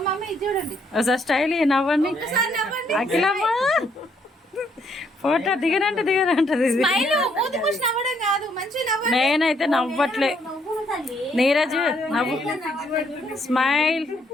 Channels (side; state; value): both; normal; correlation 0.70